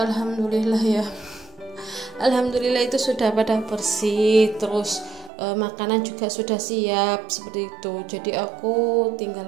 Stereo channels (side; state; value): left; drops out; at 5.3 s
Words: ya, alhamdulillah itu sudah pada bersih. Terus makanan juga sudah siap seperti itu. Jadi aku